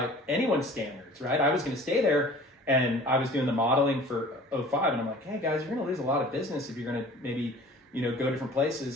anyone's standards, right? I was going to stay there, and I was doing the modeling for 05, and I'm like, hey guys, you're going to lose a lot of business if you're going to maybe, go different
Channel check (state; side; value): normal; both; correlation 0.46